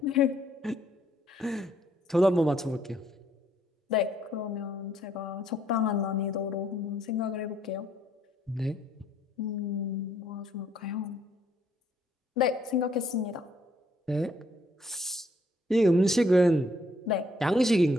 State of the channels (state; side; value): normal; both; correlation 0.68